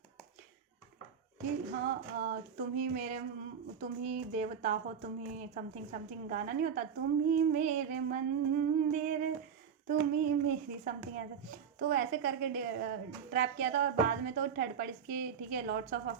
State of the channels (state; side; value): quieter; left; 7.4 dB